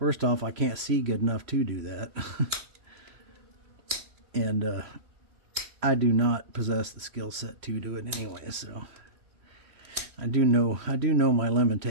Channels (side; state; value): left; late; 3.1 ms